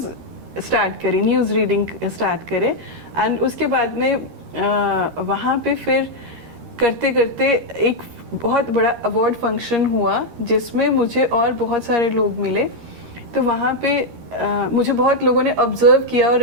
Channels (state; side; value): late; left; 13 ms